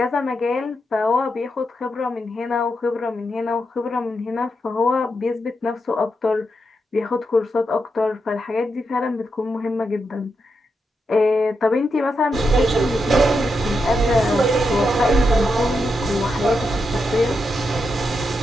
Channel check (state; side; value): normal; both; correlation 0.85